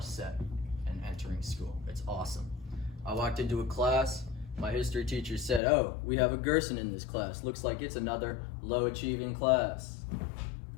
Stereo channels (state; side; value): drops out; right; at 5.6 s